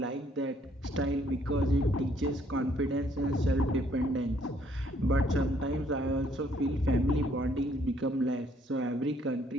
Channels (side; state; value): both; normal; correlation 0.66